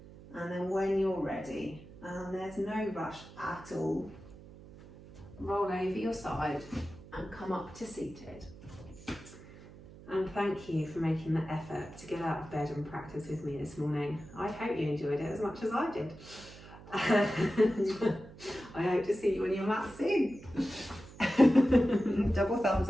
And then when you're ready, and there's no rush at all, roll over your side and come up to seated. And thank you for making the effort to get out of bed and practice with me this morning. I hope you enjoyed it as much as I did. And I hope to see you on your mat soon. Double thumbs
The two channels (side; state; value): right; noise; hum, 18 dB below the sound